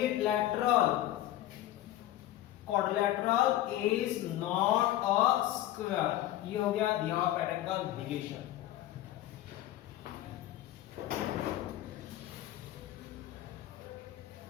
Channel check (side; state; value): right; quieter; 13.9 dB